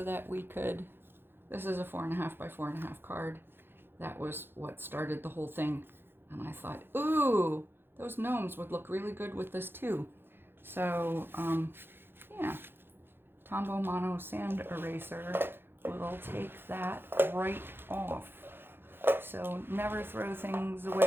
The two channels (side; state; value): left; late; 0.10 ms